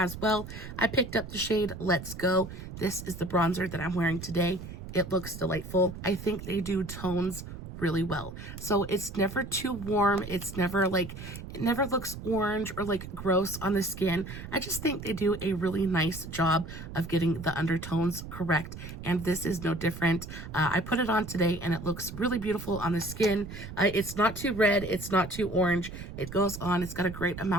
well. I picked up the shade Let's Go. This is the bronzer that I'm wearing today. It looks delightful. I think they do tones really well. So it's never too warm. It's never like, it never looks orange or like gross on the skin. I just think they do a really nice job of getting the undertones correct. And this is no different. I put it on today and it looks really beautiful on the skin. It's not too red. It's not too orange. It goes on. It's got a great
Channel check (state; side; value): noise; right; rumble, 11 dB below the sound